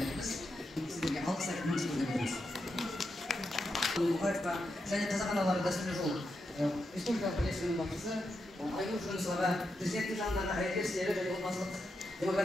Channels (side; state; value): both; normal; correlation 0.85